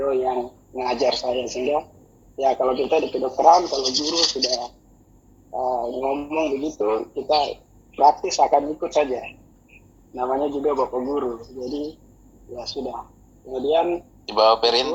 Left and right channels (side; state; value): both; identical; correlation 1.00